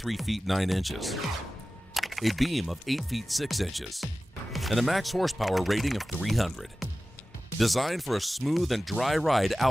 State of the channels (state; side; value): normal; both; correlation 0.96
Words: feet 9 inches, a beam of 8 feet 6 inches, and a max horsepower rating of 300. Designed for a smooth and dry ride